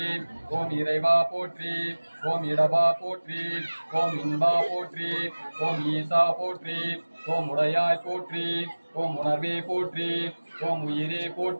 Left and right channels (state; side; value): inverted; both; correlation -1.00